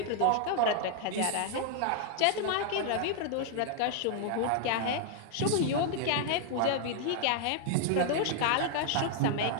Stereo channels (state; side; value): different; both; correlation 0.00